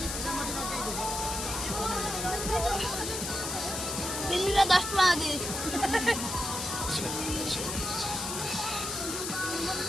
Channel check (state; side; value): noise; left; hiss, 4 dB below the sound